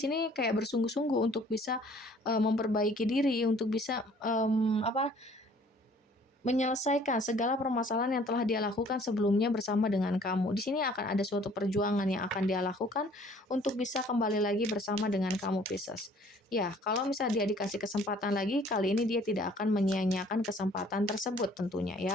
sini kayak bersungguh-sungguh untuk bisa memperbaiki diri, untuk bisa menyelesaikan segala permasalahan yang telah dia lakukan sebelumnya bersama dengan kamu. Di sini akan ada suatu perjuangan yang akan dia lakukan untuk bisa kembali lagi bersama dengan kamu, Pisces. Ya, kalau misalnya dia dikasih kesempatan lagi, kali ini dia tidak akan menyia-nyiakan kesempatan tersebut tentunya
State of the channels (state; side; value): normal; both; correlation 0.56